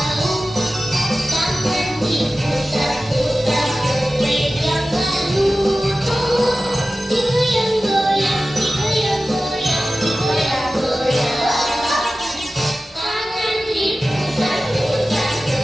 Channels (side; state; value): both; normal; correlation 0.95